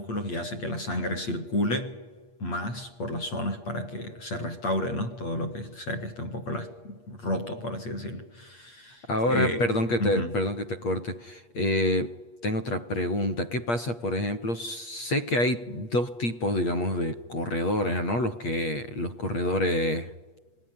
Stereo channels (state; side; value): late; right; 8.5 ms